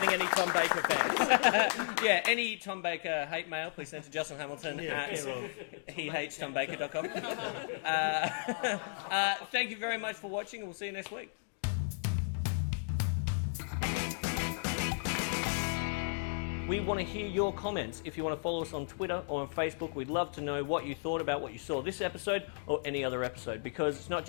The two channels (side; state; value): right; silent; digital silence